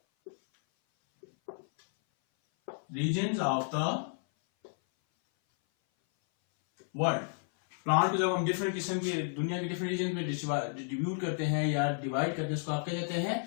regions of the world. Plant को जब हम डिफरेंट किस्म के दुनिया के डिफरेंट रीजन में डिस्ट्रीब्यूट करते हैं या डिवाइड करते हैं, उसको आप क्या कहते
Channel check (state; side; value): silent; right; 57 dB below the other